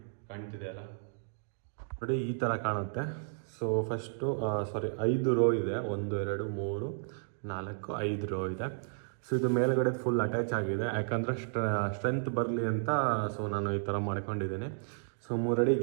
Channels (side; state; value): left; silent; digital silence